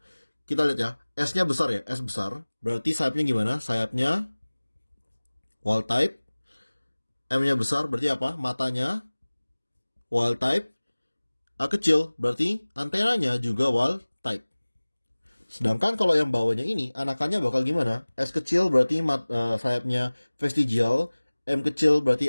Kita lihat ya, S-nya besar ya, S besar. Berarti sayapnya gimana? Sayapnya wild type. M-nya besar, berarti apa? Matanya wild type. A kecil, berarti antenanya juga wild type. Sedangkan kalau yang bawahnya ini, anakannya bakal gimana? S kecil berarti sayapnya vestigial, M kecil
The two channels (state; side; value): inverted; both; correlation -1.00